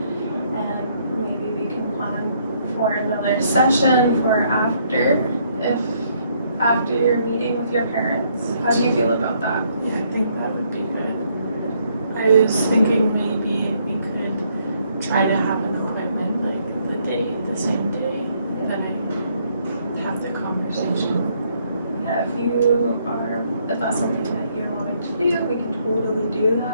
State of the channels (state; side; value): inverted; both; correlation -0.70